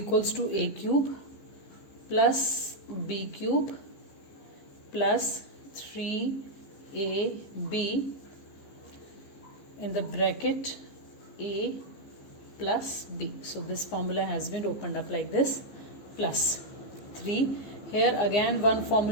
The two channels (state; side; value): late; right; 15 ms